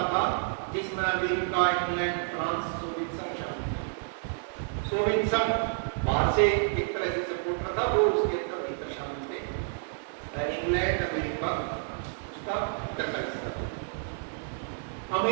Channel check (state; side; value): silent; left; 58 dB below the other